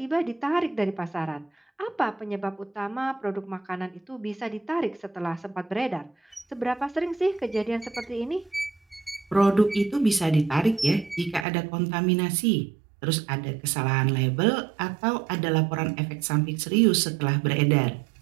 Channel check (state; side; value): drops out; left; at 11.5 s